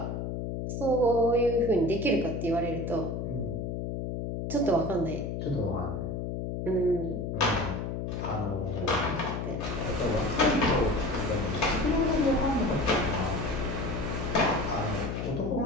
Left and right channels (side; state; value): left; noise; hum, 3 dB below the sound